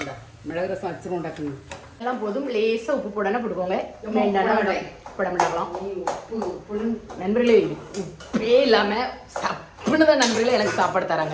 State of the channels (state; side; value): identical; both; correlation 1.00